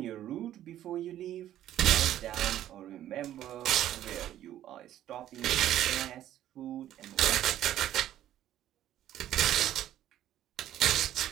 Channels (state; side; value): quieter; left; 12.3 dB